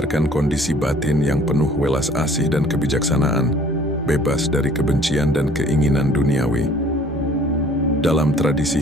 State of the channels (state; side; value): normal; both; correlation 0.54